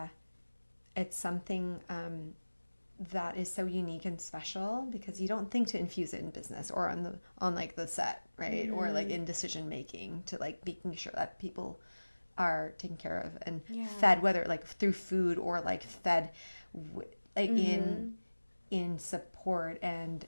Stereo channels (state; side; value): inverted; both; correlation -1.00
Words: something that is so unique and special because you don't think to infuse it in business or on like the set, right? Or like in decision making, to like making sure that people are taken care of and fed, whether like through food or like fed like in support and